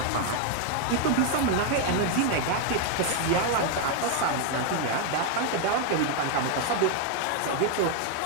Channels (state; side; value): different; both; correlation 0.01